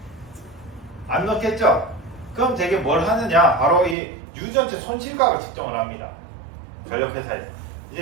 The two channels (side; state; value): left; drops out; at 4.0 s